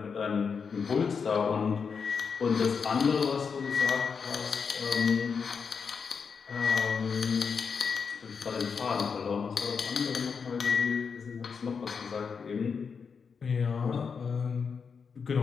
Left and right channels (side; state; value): right; quieter; 5.9 dB